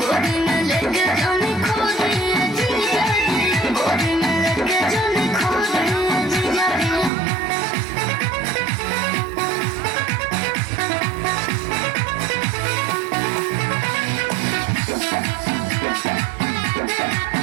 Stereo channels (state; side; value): drops out; left; at 7.1 s